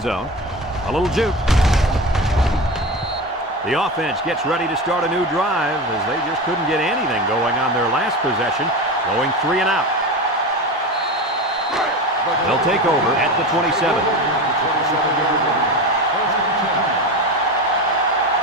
zone. A little juke. The offense gets ready to start a new drive as they just couldn't get anything going on their last possession, going 3 and out. They'll take over at the 27.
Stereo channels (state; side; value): normal; both; correlation 0.25